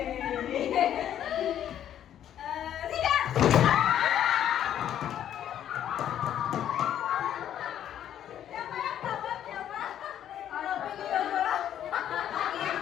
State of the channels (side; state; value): right; quieter; 10.5 dB